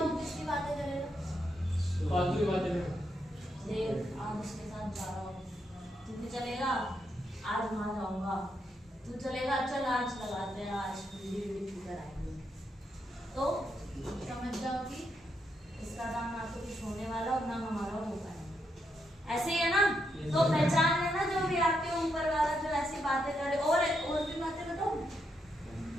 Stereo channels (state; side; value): normal; both; correlation 0.80